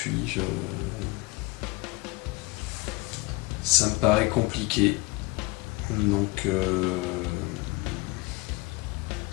Ça me paraît compliqué. Donc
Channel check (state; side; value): quieter; right; 22.4 dB